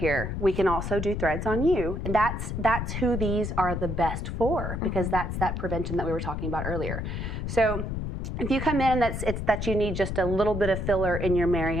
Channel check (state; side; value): noise; left; rumble, 3 dB below the sound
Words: we can also do threads on you. And that's who these are the best for, because that's that prevention that we were talking about earlier. So if you come in and it's that you need just a little bit of filler in your